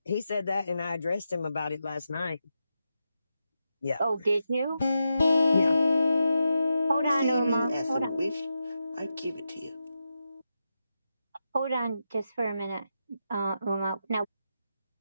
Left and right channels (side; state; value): both; inverted; correlation -0.87